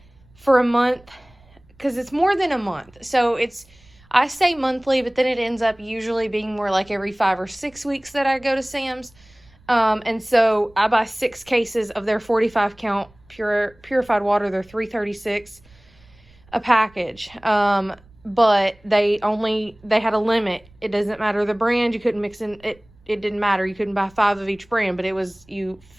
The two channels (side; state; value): right; noise; rumble, 28 dB below the sound